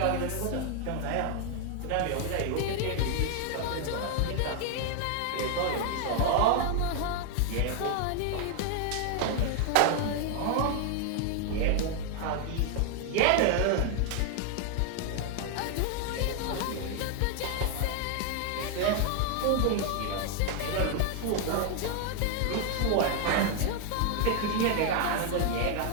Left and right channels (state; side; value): different; both; correlation 0.00